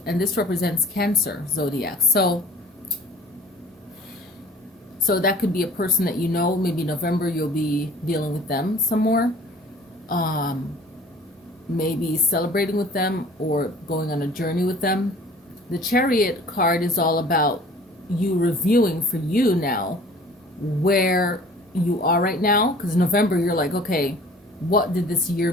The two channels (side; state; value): both; normal; correlation 0.48